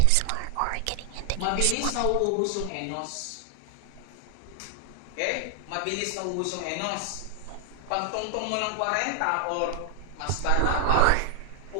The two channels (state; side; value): different; both; correlation 0.00